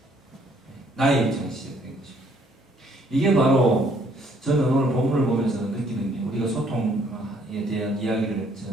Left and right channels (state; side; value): normal; both; correlation 0.64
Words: 나의 입장에서 시작된 거죠. 이게 바로 저는 오늘 본문을 보면서 느끼는 게 우리가 소통에 대한 이야기를